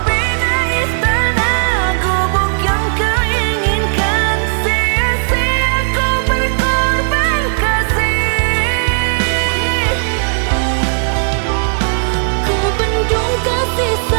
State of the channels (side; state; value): left; silent; digital silence